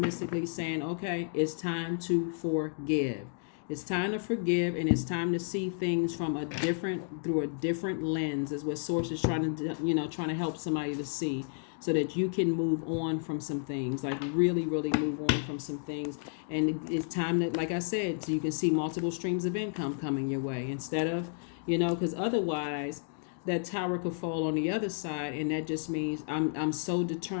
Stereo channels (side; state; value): right; silent; digital silence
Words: saying, okay, it's time to forgive. It's time to forgive, and it's time to see things through a different lens, is what Source is trying to help somebody to see, so that you can move on from some things, like really, really move on from some things. And it's time that, like I said, so you can see multiple streams of income coming your way, instead of, because otherwise that tower could fall on the other side, and that just means I'm so